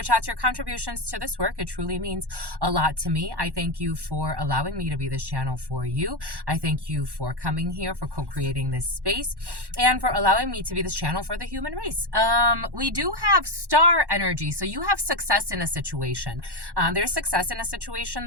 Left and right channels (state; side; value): late; left; 1.1 ms